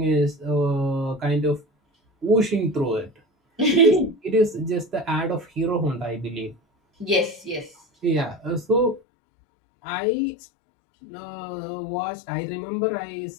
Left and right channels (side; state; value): right; drops out; at 9.0 s